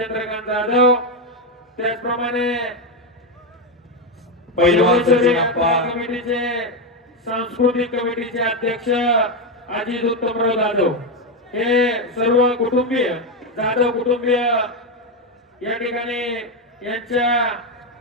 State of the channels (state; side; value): normal; both; correlation 0.08